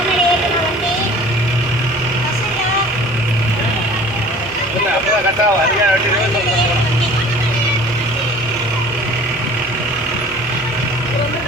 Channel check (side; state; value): both; normal; correlation 0.47